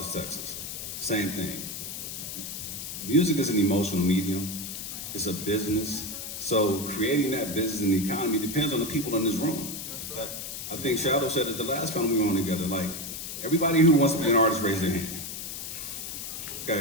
Texas. Same thing. Music is an emotional medium. It's a business. So creating that business and the economy depends on the people in this room. I think Shadow said at the last panel we were on together, like, everybody who wants to be an artist, raise their hand.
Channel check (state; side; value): noise; left; hiss, 7 dB below the sound